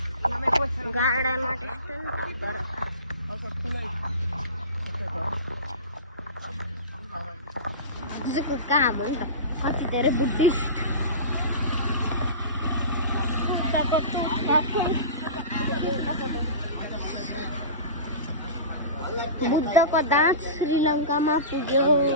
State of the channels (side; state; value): both; inverted; correlation -0.30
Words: गार्डनमा त्यस्तो नि काम हो नि त. कति धेरै बुद्धिस्ट बुद्धको दाँत श्रीलङ्कामा पुग्यो.